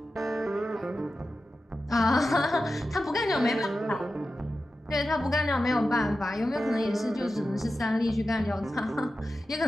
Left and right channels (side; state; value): both; normal; correlation 0.92